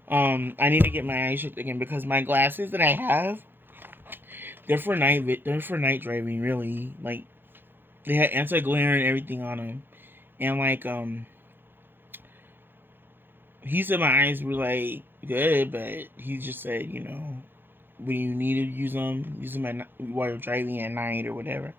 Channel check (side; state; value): left; late; 0.099 ms